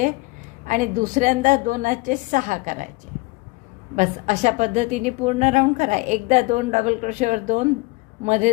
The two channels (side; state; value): right; quieter; 24.0 dB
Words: आणि दुसऱ्यांदा 2चे 6 करायचे. बस अशा पद्धतीने पूर्ण राऊंड करा. एकदा 2 डबल क्रोशेवर 2, मध्ये